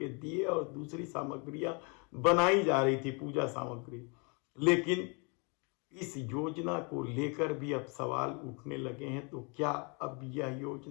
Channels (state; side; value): quieter; right; 32.9 dB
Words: दिए और दूसरी सामग्रियां बनाई जा रही थी, पूजा सामग्री। लेकिन इस योजना को लेकर भी अब सवाल उठने लगे हैं, तो क्या अब यह